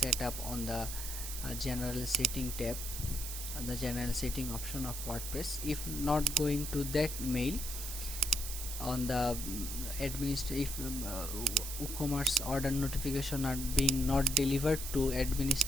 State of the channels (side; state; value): right; noise; hiss, 6 dB below the sound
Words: up on the general setting tab, the general setting option of WordPress. If not going to that mail on the if WooCommerce order notification are being not delivered to